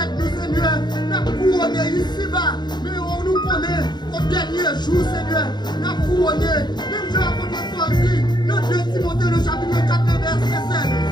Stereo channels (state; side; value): late; right; 0.21 ms